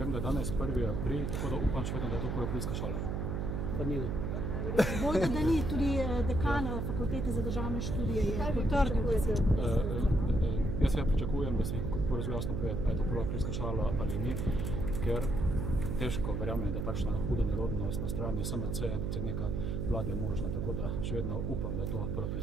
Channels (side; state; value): right; noise; hum, 1 dB below the sound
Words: da je danes 1. april, tako da upam še vedno, da je to Koropilska šola. Pa ni. Bojda, da ni, tudi dekan fakultete za državne študije je potrdil, da se Jaz seveda pričakujem, da se zelo jasno pove, ali je to Koropilska šola ali ni, ker težko verjamem, da takšna huda nerodnost na strani SMC, predsednika vlade je možna, tako da še vedno upam, da je to